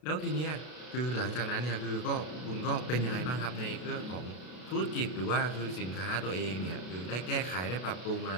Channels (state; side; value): late; right; 33 ms